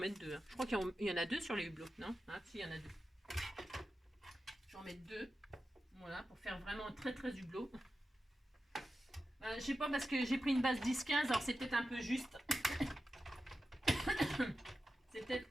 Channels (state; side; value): normal; both; correlation 0.92